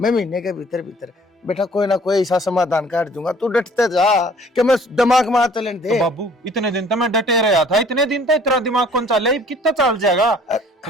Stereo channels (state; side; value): normal; both; correlation 0.54